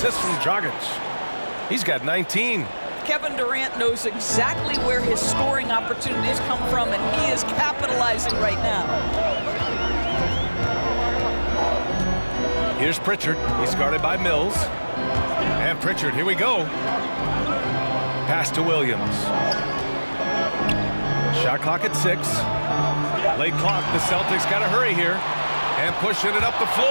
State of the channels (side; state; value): both; inverted; correlation -1.00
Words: from Dragic. He's got 19. Kevin Durant knows exactly where his scoring opportunities come from, and he is capitalizing right now. Here's Pritchard. He's guarded by Mills. And Pritchard, here we go. Pass to Williams. Shot clock at 6. Late clock. The Celtics got to hurry here. And pushing it up the